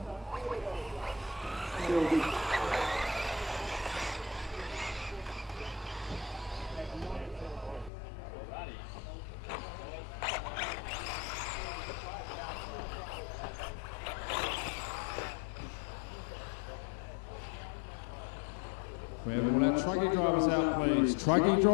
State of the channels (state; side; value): drops out; right; at 7.9 s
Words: we have all our truggy drivers out, please? Truggy